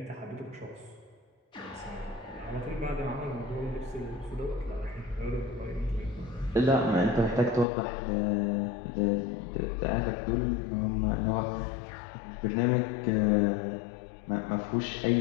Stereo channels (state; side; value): drops out; right; at 7.7 s